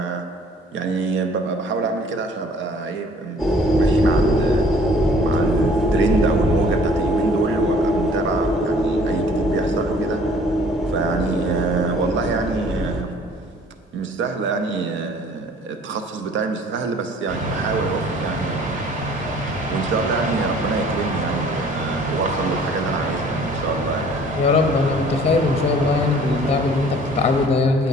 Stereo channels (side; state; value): both; normal; correlation 0.53